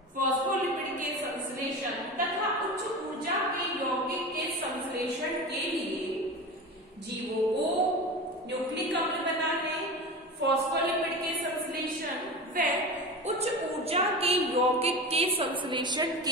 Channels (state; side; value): normal; both; correlation 0.28